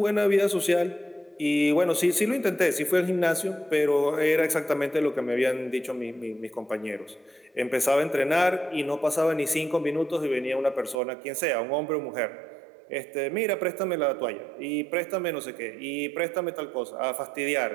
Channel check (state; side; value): drops out; left; at 11.0 s